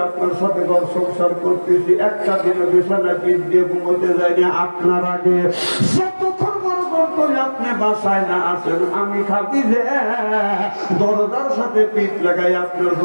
আপনার সাথে ঘর সংসার করতেছি একটা দিনে বিছানায় পিঠ দিয়ে ঘুমোতে যাই না আপনার আগে। যতক্ষণ বড় করে আপনি বাসায় না আসেন আমি খাদিজা দরজার সাথে পিঠ লাগাই আপনার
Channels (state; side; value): inverted; both; correlation -1.00